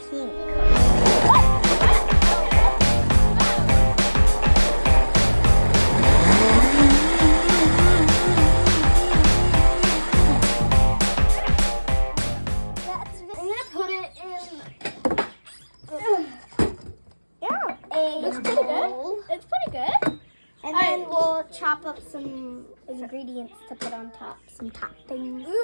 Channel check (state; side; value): inverted; both; correlation -1.00